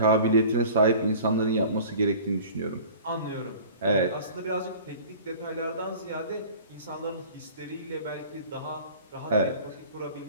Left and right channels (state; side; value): inverted; both; correlation -0.44